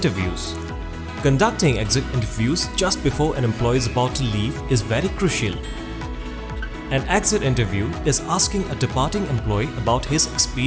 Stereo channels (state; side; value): identical; both; correlation 1.00